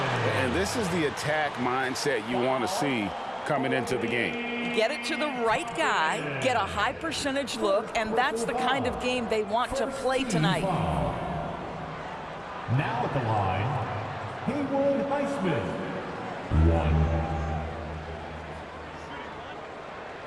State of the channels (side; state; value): both; identical; correlation 1.00